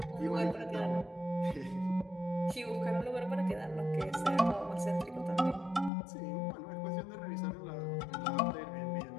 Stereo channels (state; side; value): drops out; right; at 5.9 s